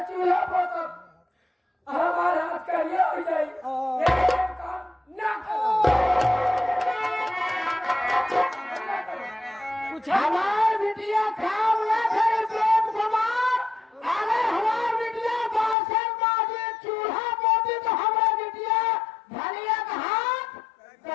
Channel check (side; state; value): right; drops out; at 15.8 s